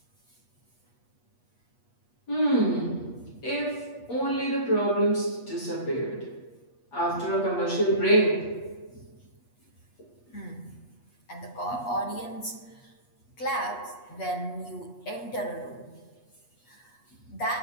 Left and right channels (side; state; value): right; late; 8.3 ms